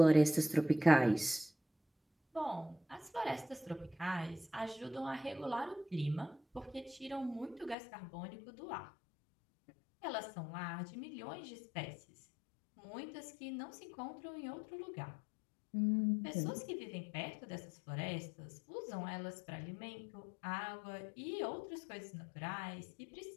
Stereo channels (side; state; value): right; drops out; at 7.8 s